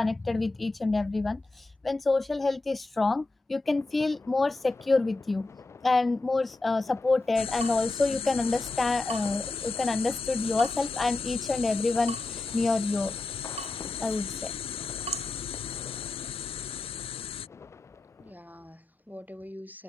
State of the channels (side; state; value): right; quieter; 3.2 dB